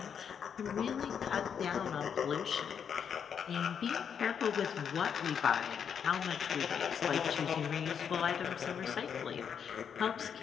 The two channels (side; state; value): right; quieter; 7.5 dB